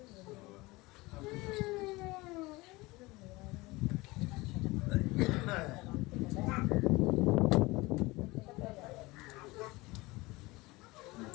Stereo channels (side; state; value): right; quieter; 22.0 dB